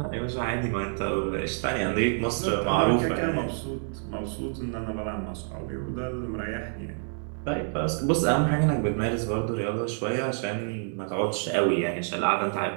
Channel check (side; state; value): left; silent; 58 dB below the other